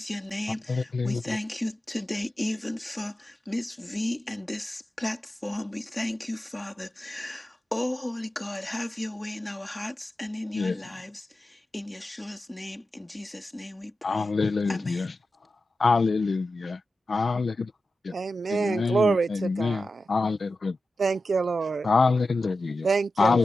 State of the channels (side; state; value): both; normal; correlation 0.92